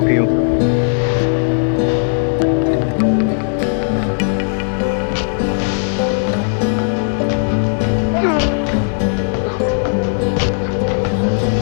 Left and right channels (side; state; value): right; silent; digital silence